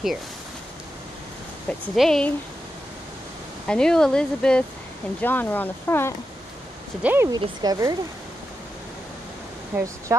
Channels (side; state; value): both; normal; correlation 0.88